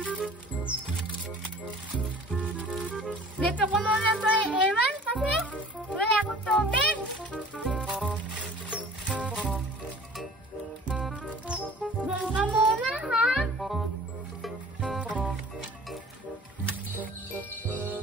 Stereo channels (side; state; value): both; normal; correlation 0.47